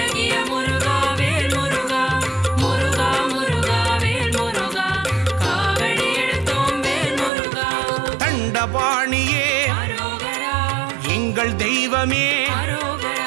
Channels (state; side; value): drops out; left; at 7.3 s